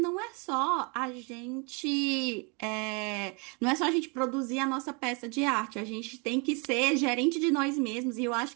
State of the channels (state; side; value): quieter; left; 32.6 dB